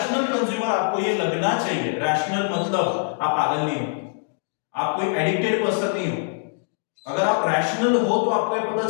कंज्यूमर आपको ये लगना चाहिए। रैशनल मतलब आप पागल नहीं हो, आप कोई एडिक्टेड पर्सन नहीं हो। अगर आप रैशनल हो तो आपको ये पता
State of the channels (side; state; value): right; silent; digital silence